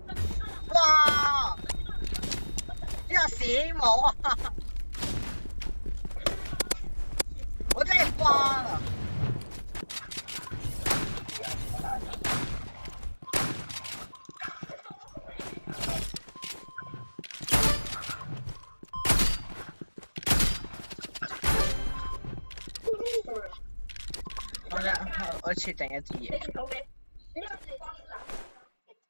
哇！呢個屎冇啊！我真係瓜啦！我設定一啲嘢。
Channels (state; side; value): inverted; both; correlation -1.00